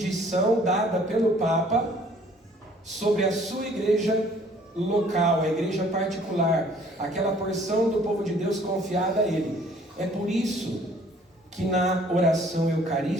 dada pelo Papa sobre a sua igreja local, a igreja particular, aquela porção do povo de Deus confiada a ele. É por isso que na oração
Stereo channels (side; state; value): both; normal; correlation 0.57